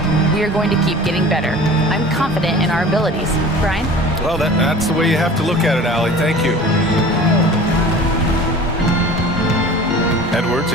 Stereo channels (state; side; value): normal; both; correlation 0.41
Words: we are going to keep getting better. I'm confident in our abilities." Brian? Well, that's the way you have to look at it, Allie. Thank you. Edwards